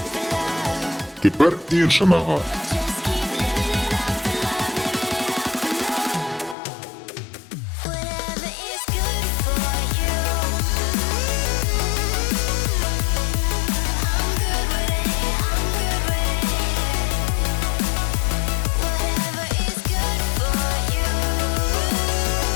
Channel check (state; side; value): drops out; right; at 6.6 s